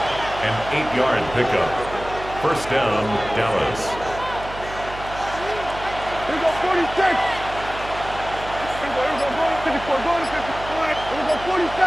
An 8-yard pickup. First down, Dallas. Here we go, 46. Here we go, going to 54, going to 54. Here we go,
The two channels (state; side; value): noise; right; hum, 12 dB below the sound